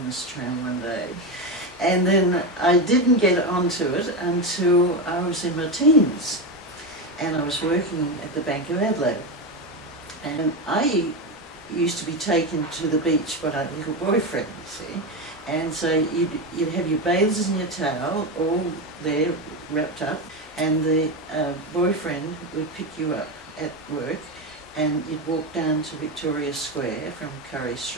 this tram one day. And then I didn't get onto it until I was in my teens, and I was working at the Bank of Adelaide. And I used to be taken to the beach by a little boyfriend, you see. And so you'd have your bathers and your towel all there wrapped up, and the boyfriend would pick you up at work, and you'd walk down to Victoria Square from Curry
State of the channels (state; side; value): normal; both; correlation 0.14